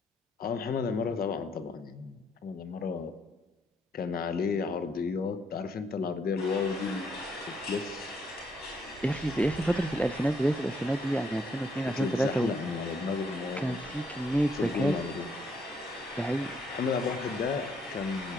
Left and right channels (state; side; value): normal; both; correlation 0.72